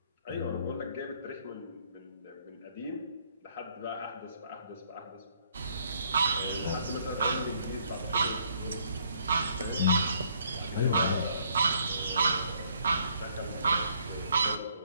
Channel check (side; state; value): both; inverted; correlation -0.66